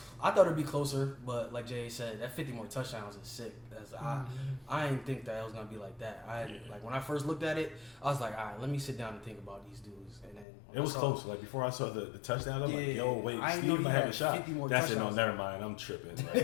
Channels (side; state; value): right; drops out; at 10.5 s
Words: thought it'd be closer, but like Jay said, that 50 more touchdowns is sick. I didn't think that it was gonna be like that. Like when I first looked at it, I was like, all right, let me sit down and think about these dudes. And then when It was I saw- close. Like before I saw the touchdown, I'm like, Yeah, yo, wait, I didn't know Steve he might have had a shot. 50 more That's it. No, touchdowns. never mind. I'm tripping.